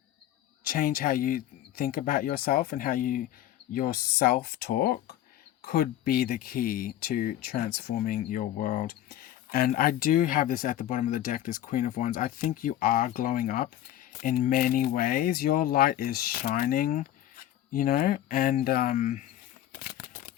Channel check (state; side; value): quieter; right; 12.6 dB